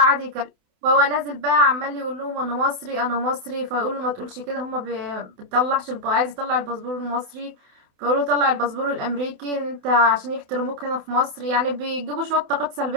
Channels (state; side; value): late; left; 28 ms